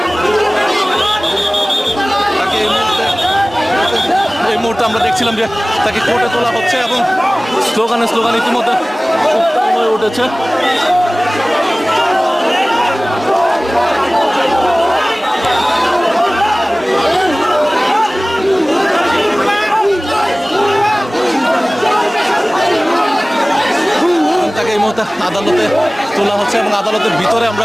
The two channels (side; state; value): both; normal; correlation 0.98